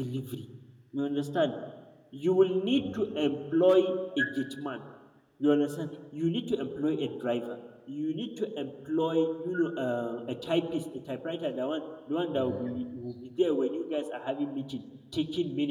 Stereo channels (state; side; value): identical; both; correlation 1.00